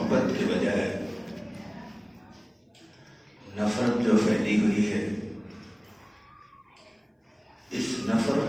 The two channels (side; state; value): both; identical; correlation 1.00